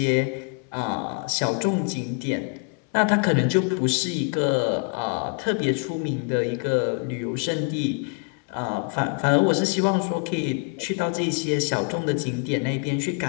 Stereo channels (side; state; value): right; quieter; 38.2 dB